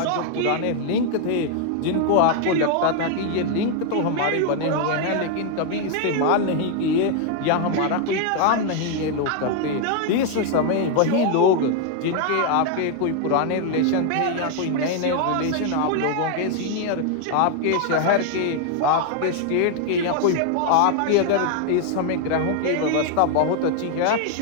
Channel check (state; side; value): different; both; correlation 0.00